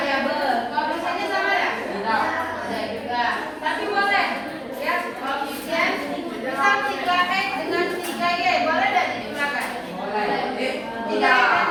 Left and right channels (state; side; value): identical; both; correlation 1.00